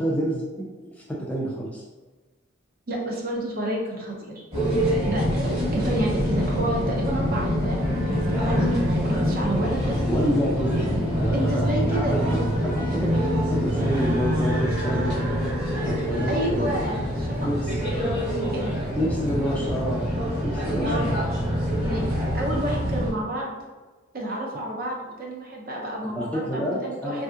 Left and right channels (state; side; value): normal; both; correlation 0.65